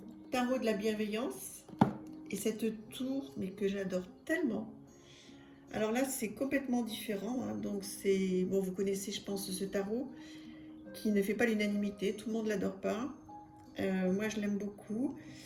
tarot de la bienveillance. Et cette tour, mais que j'adore tellement. Alors là, c'est complètement différent. Hein. Donc c'est, bon, vous connaissez, je pense, ce tarot qui ne fait pas l'unanimité. Tout le monde ne l'adore pas. Moi, je l'aime beaucoup.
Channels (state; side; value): identical; both; correlation 1.00